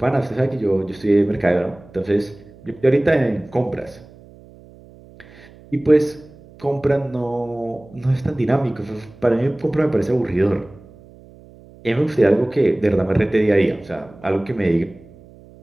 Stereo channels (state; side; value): noise; right; hum, 23 dB below the sound